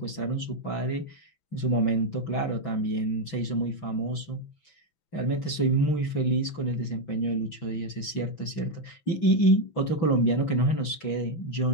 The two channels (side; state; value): right; late; 6.0 ms